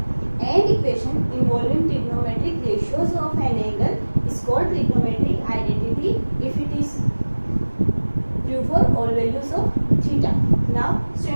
An equation involving trigonometric ratios of an angle is called trigonometric identity if it is true for all values of theta. Now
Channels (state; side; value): inverted; both; correlation -1.00